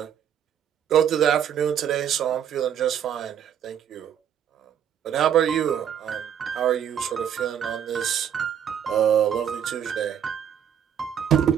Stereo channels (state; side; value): quieter; left; 9.1 dB